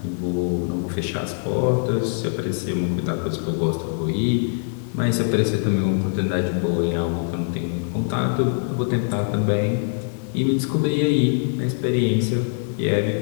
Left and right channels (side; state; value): right; silent; digital silence